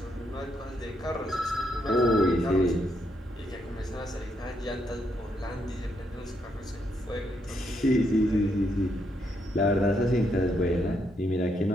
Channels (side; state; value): both; normal; correlation 0.77